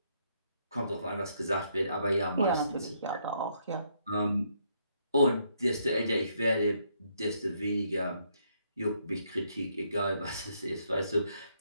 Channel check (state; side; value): inverted; both; correlation -0.72